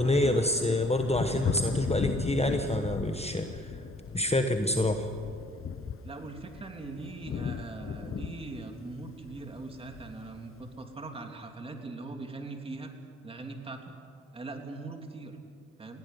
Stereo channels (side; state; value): both; normal; correlation 0.60